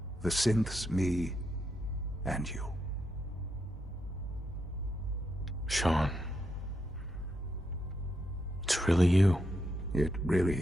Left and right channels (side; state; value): both; normal; correlation 0.82